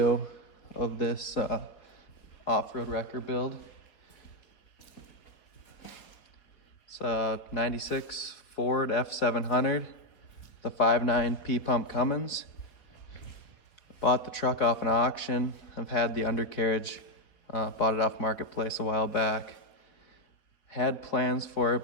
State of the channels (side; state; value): right; late; 4.4 ms